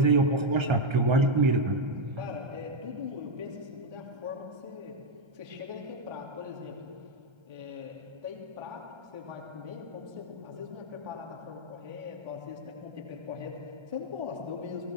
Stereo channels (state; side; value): late; left; 1.3 ms